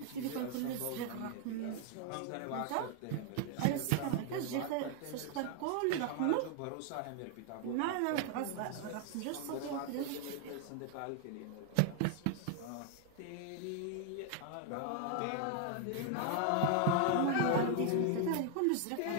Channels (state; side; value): different; both; correlation 0.00